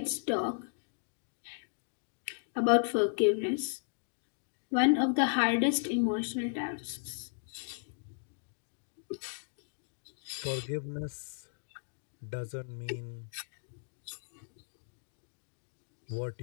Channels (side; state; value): right; silent; digital silence